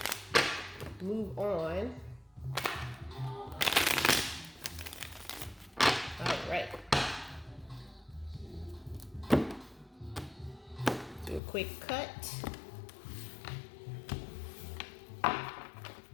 move on. All right. Do a quick cut.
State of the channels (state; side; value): drops out; right; at 11.4 s